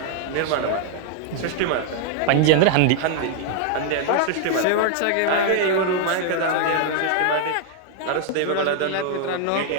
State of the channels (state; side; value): different; both; correlation 0.00